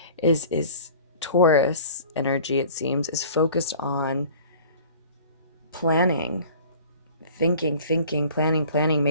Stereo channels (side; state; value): both; inverted; correlation -0.46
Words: is Taurus energy, it seems, is focused on planning, thinking, planning,